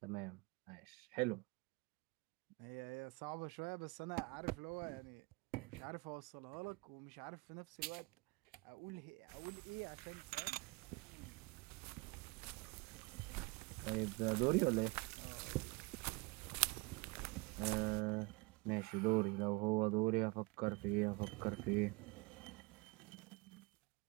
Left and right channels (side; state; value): left; quieter; 26.3 dB